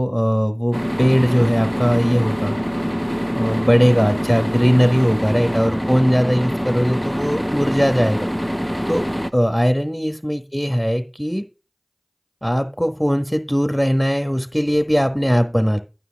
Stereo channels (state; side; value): identical; both; correlation 1.00